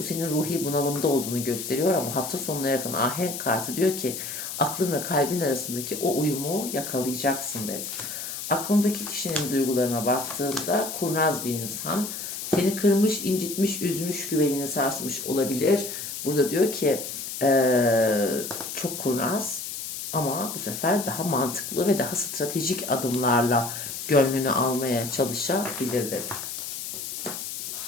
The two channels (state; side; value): noise; left; hiss, 7 dB below the sound